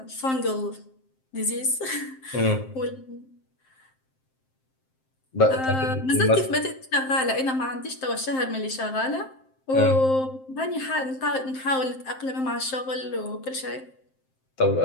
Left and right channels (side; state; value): right; late; 7.6 ms